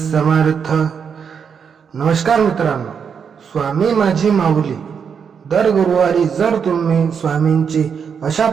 नमस्कार मित्रांनो, स्वामी माझी माऊली. दर गुरुवारी जर तुम्ही स्वामींची अशा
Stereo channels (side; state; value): left; quieter; 6.8 dB